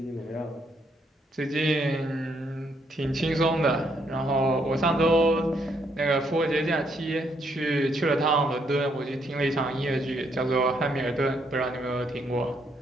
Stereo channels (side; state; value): both; normal; correlation 0.72